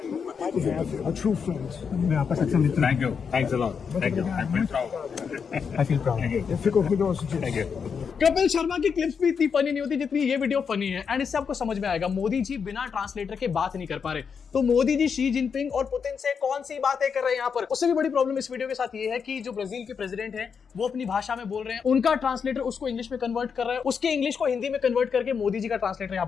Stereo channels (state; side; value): quieter; right; 6.3 dB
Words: you have a true friend. मैं आपका सच्चा मित्र हूँ। Thank you. Thanks a lot. Thank you. I'm very proud. I feel proud. Thank you. Kapil Sharma की clips भी इतनी funny नहीं होती जितनी ये वीडियो फनी है। एंड इससे आपको समझ में आएगा मोदी जी बिना ट्रांसलेटर के बात नहीं कर पा रहे। तो मोदी जी शी जिनपिंग और पुतिन से कौन सी बातें कर रहे हैं यहाँ पर। उससे भी बड़ी प्रॉब्लम इस वीडियो के साथ ये है कि जो ब्राजील के प्रेसिडेंट हैं वो अपनी भाषा में बोल रहे हैं, उनका ट्रांसलेटर उसको इंग्लिश में कन्वर्ट कर रहा है, उसके इंग्लिश को हिंदी में कन्वर्ट करके मोदी जी का ट्रांसलेटर यहाँ